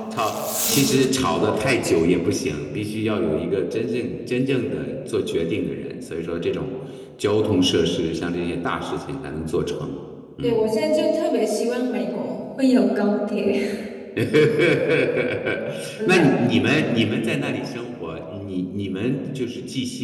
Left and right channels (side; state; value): both; identical; correlation 1.00